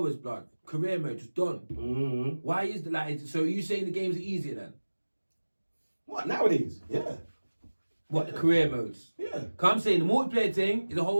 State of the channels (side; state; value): both; inverted; correlation -1.00